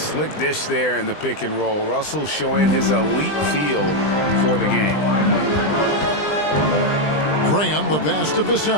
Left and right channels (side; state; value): right; late; 20 ms